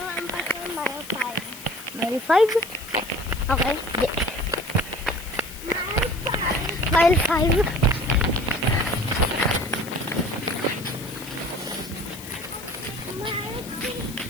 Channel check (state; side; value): noise; left; hiss, 15 dB below the sound